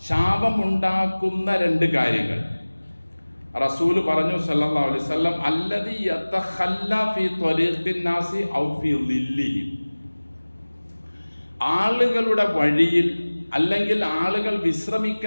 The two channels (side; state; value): both; inverted; correlation -1.00